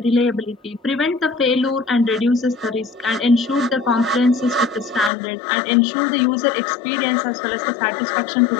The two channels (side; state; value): right; drops out; at 5.1 s